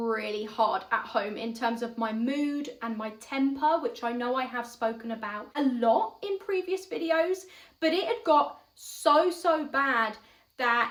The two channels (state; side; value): identical; both; correlation 1.00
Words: hard at home in terms of my mood and my temper, which I know I have spoken about a lot in previous videos, but it had got so bad